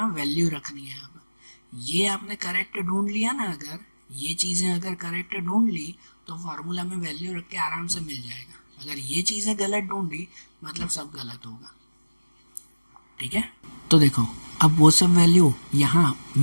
वैल्यू रखनी है। अब ये आपने करेक्ट ढूंढ लिया ना, अगर ये चीज़ें अगर करेक्ट ढूंढ ली तो फार्मूला में वैल्यू रख के आराम से मिल जाएगा। अगर ये चीज़ें गलत ढूंढी मतलब सब गलत होगा, ठीक है। तो देखो अब वो सब वैल्यू यहाँ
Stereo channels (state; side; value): inverted; both; correlation -1.00